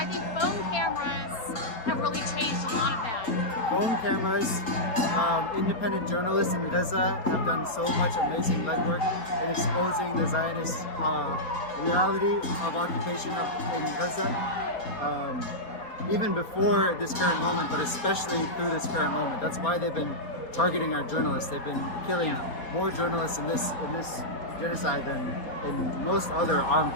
think phone cameras have really changed a lot of that. Phone cameras, independent journalists in Gaza have done so much amazing legwork in exposing the Zionist reality of occupation in Gaza. Even before this current moment, but especially through this current moment. That's why they've been targeting our journalists. They've been killing more journalists in this genocide than in most other armed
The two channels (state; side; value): late; right; 4.3 ms